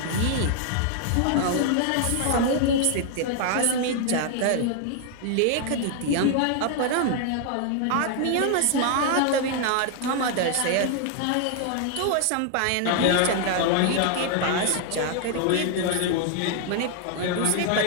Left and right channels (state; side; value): different; both; correlation 0.00